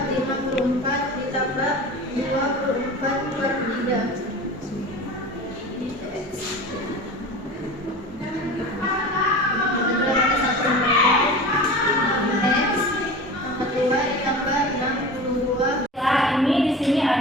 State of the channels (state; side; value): normal; both; correlation 0.34